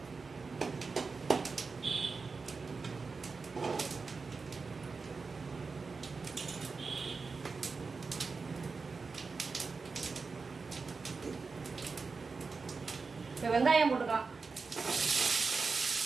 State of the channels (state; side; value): quieter; left; 4.5 dB